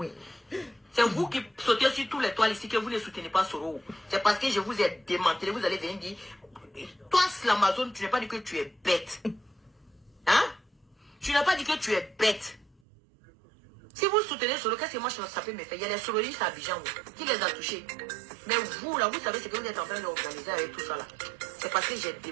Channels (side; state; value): left; drops out; at 12.7 s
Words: C'est vous qui sautez sur tous les toiles ici que vous ne soutenez pas Soro. C'est parce que je vous ai démantelé, vous allez venir dire, toi, l'Amazon, tu n'as pas dit que tu es bête. Hein? Tu n'as pas dit que tu es bête. Si vous soutenez Soro, qu'est-ce que moi ça peut me faire? Il y a des sorolistes à Abidjan qui les a touchés. Mais vous, là, vous savez ce que vous êtes en train d'organiser avec tout ça, là. C'est parce que j'ai